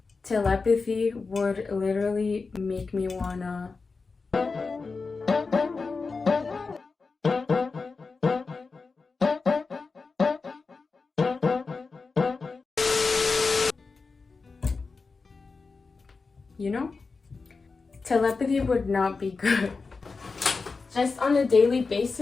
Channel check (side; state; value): right; quieter; 4.4 dB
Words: telepathy would literally make me wanna you know? Telepathy would not be good. Just on a daily